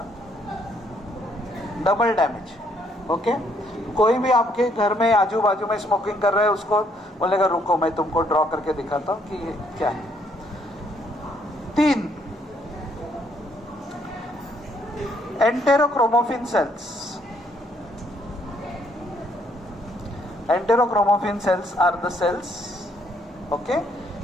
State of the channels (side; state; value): both; normal; correlation 0.69